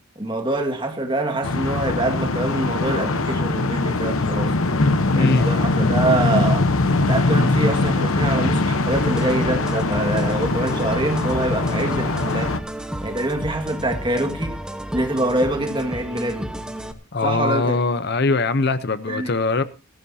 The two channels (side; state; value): both; normal; correlation 0.50